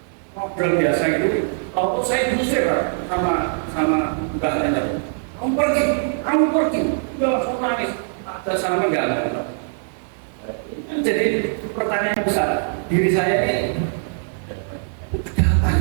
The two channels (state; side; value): silent; left; digital silence